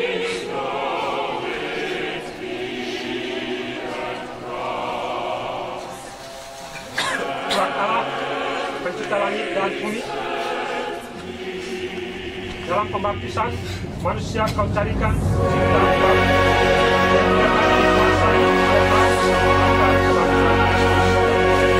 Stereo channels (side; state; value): both; identical; correlation 1.00